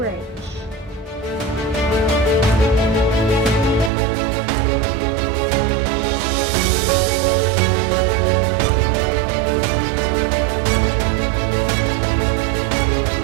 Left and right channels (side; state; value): left; drops out; at 3.9 s